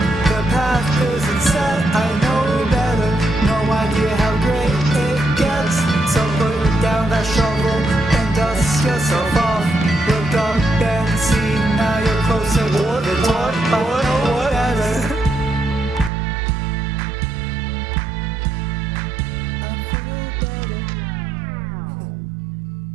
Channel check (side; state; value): left; drops out; at 16.1 s